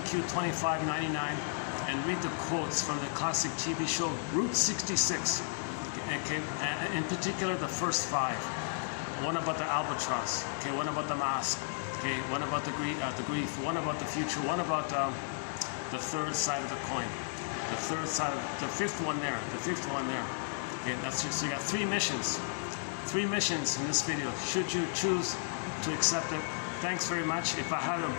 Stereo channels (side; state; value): right; silent; digital silence